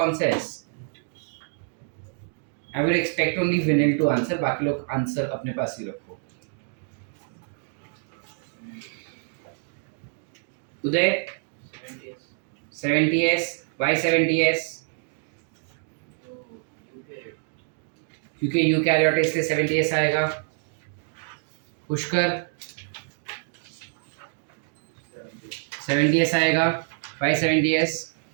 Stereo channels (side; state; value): left; silent; 60 dB below the other